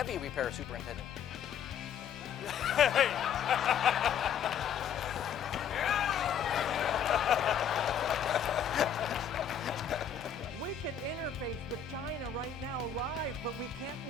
repair superintendent. We can interface with China right now live, but we can't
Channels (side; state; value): right; quieter; 7.8 dB